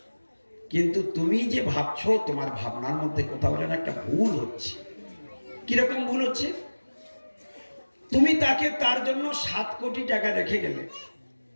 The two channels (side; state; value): both; inverted; correlation -1.00